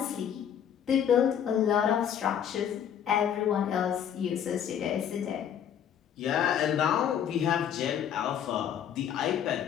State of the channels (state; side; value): quieter; right; 9.1 dB